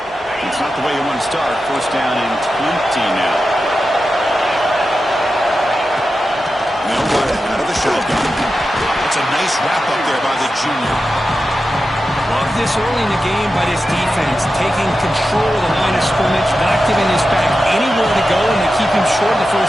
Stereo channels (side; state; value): both; normal; correlation 0.91